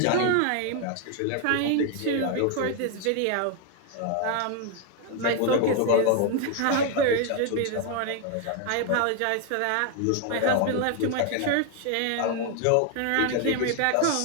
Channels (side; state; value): both; different; correlation 0.00